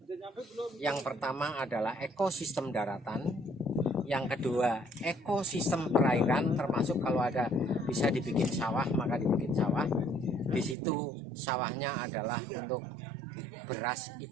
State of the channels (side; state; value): left; drops out; at 10.8 s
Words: Yang pertama adalah ekosistem daratan, yang kedua ekosistem perairan, termasuk kalau ada bisa dibikin sawah maka dibikin sawah. Di situ sawahnya adalah untuk beras